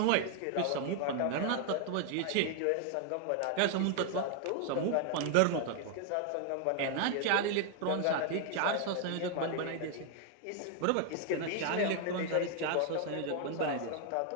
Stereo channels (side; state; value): both; different; correlation 0.00